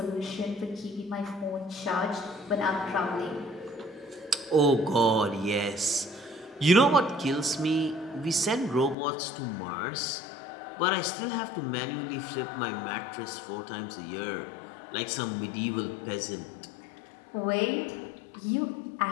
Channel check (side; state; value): right; drops out; at 9.0 s